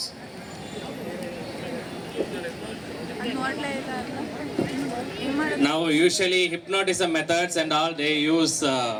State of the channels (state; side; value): identical; both; correlation 1.00